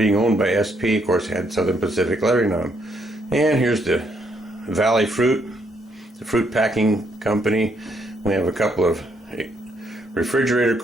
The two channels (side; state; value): both; normal; correlation 0.73